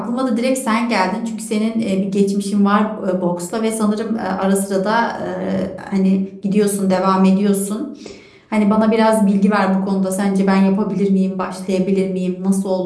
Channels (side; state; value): both; identical; correlation 1.00